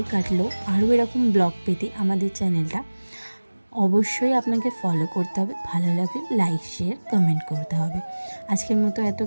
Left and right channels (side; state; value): both; inverted; correlation -1.00